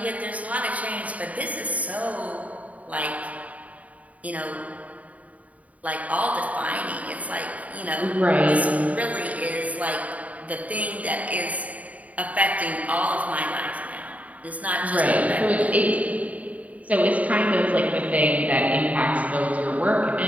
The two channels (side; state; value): left; late; 0.070 ms